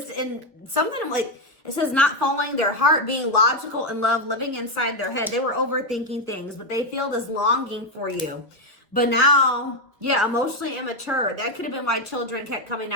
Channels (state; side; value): normal; both; correlation 0.06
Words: and something like, it says not following their heart, being logical in love, living inside their head. They were overthinking things, but they feel this longing for you. But now, yeah, emotionally immature. That could have been why children kept coming